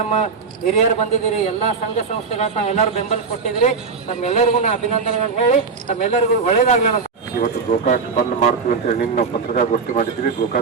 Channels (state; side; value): quieter; left; 5.0 dB